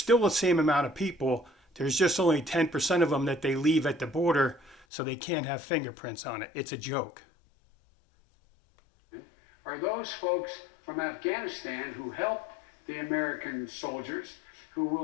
the same amount of people. There's just only 10% of them that they leave at the border so they can't have fingerprints on it. It's a joke. Are those folks from Afghanistan who helped the American soldiers,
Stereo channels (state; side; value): drops out; right; at 4.9 s